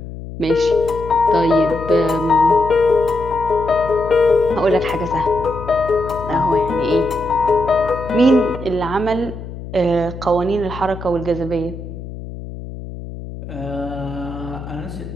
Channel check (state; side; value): noise; left; hum, 11 dB below the sound